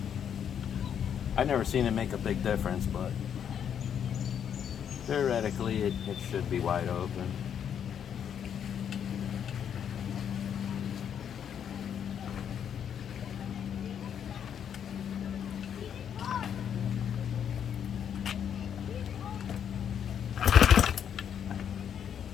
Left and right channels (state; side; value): quieter; right; 8.5 dB